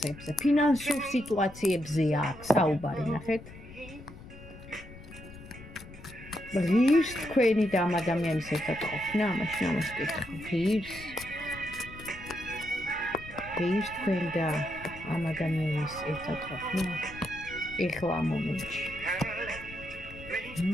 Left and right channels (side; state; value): left; noise; rumble, 16 dB below the sound